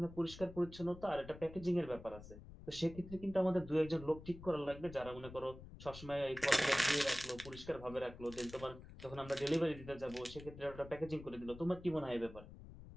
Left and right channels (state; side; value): noise; left; rumble, 15 dB below the sound